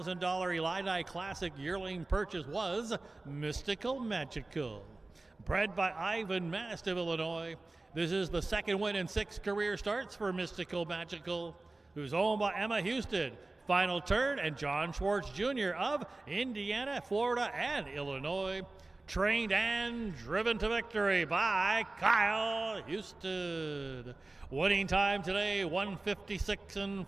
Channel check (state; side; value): quieter; left; 3.1 dB